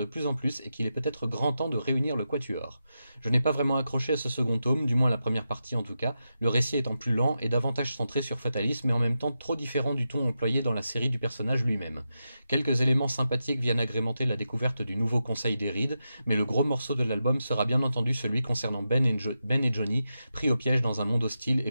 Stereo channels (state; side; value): inverted; both; correlation -0.88